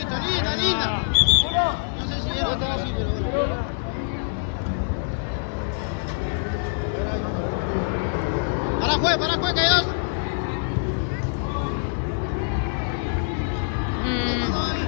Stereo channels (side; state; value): right; silent; digital silence